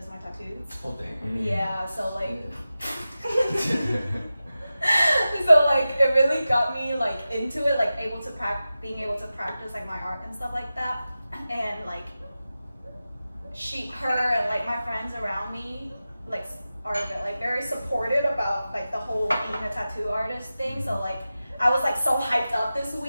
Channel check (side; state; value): both; inverted; correlation -0.94